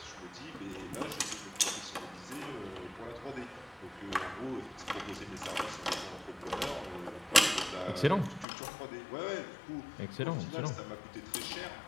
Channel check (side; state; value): right; drops out; at 8.5 s